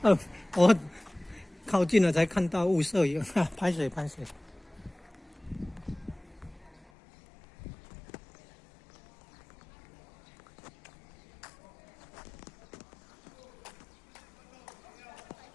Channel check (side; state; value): right; drops out; at 6.9 s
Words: 我靠近了才看到误摄影，拍水。